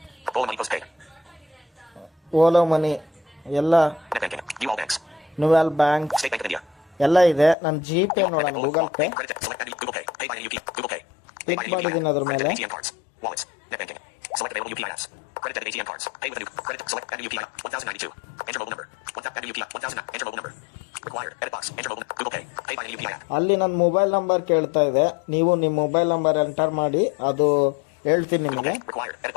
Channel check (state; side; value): drops out; right; at 7.6 s